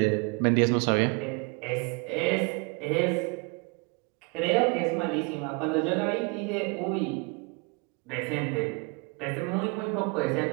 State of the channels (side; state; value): left; quieter; 31.2 dB